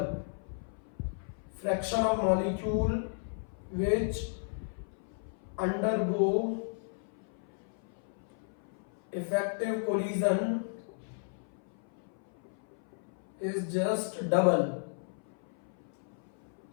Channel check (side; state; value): right; silent; 55 dB below the other